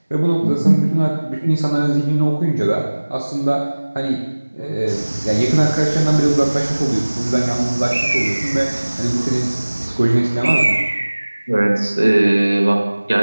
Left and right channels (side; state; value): both; inverted; correlation -1.00